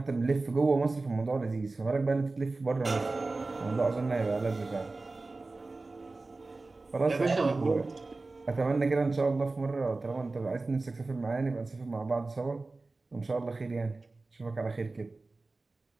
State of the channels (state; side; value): quieter; left; 3.4 dB